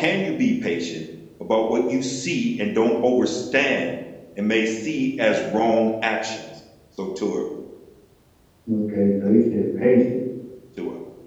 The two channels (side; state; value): both; identical; correlation 1.00